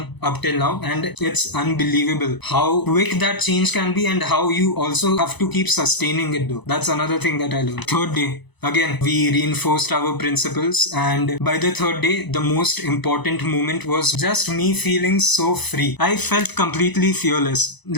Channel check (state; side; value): late; right; 0.99 ms